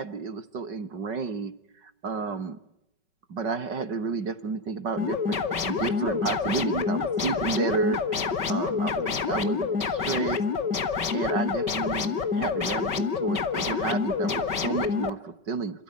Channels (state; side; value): late; left; 5.3 ms